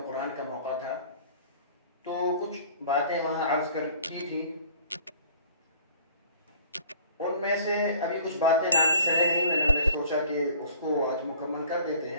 का मौका था, तो कुछ बातें वहाँ अर्ज़ की थी। उनमें से अभी कुछ बातें नाक़िस रह गई। मैंने सोचा कि उसको आज मुकम्मल कर देते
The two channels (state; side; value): inverted; both; correlation -0.51